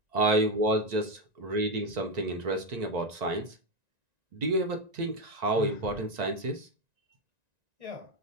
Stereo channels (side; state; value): left; late; 1.9 ms